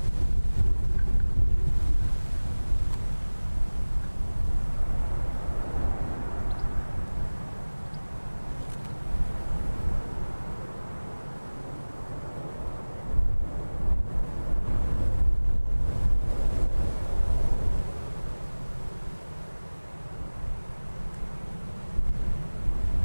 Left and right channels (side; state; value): both; inverted; correlation -1.00